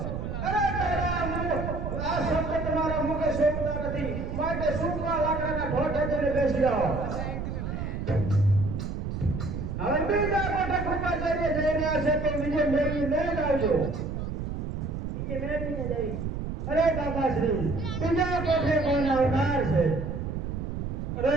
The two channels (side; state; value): right; noise; rumble, 4 dB below the sound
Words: અરે તારા આ શબ્દ તમારા મુખે શોભતા નથી, માટે સૂકા લાકડાના ઢોઢે જઈને બેસી જાઓ. હવે બીજા કોઠે કૃપાચાર્ય જઈ રહ્યા છે કે વિજય મેળવીને જ આવજો. વિજય મેળવીને જઈ. અરે દાદાશ્રી, બીજા કોઠે કોણ આવનાર છે? અરે